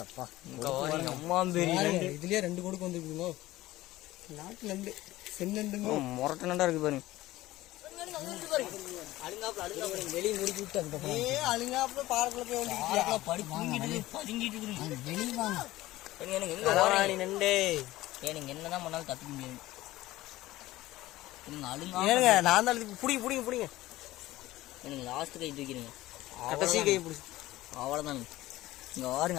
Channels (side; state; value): right; quieter; 16.9 dB